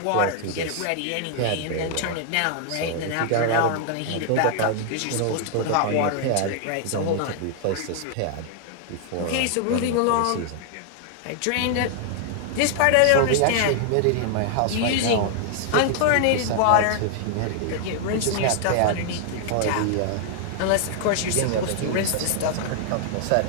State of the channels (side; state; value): both; different; correlation 0.00